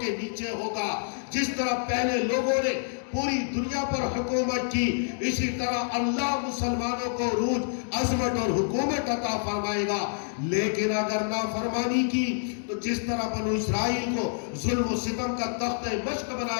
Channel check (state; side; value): silent; right; digital silence